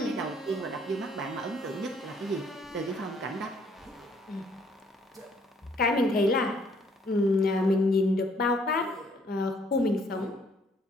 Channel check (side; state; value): both; normal; correlation 0.64